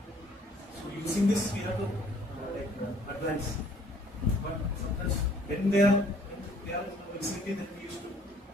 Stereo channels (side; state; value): both; normal; correlation 0.59